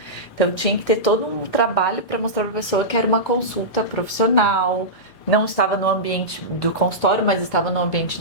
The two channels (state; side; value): late; right; 4.1 ms